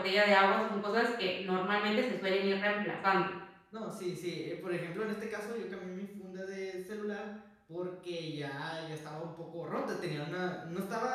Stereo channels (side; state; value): both; identical; correlation 1.00